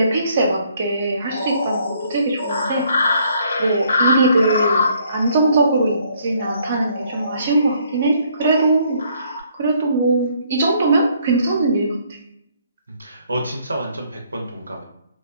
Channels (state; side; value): inverted; both; correlation -0.66